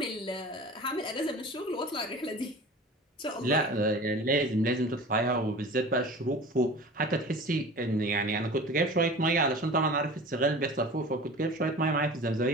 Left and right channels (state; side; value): normal; both; correlation 0.38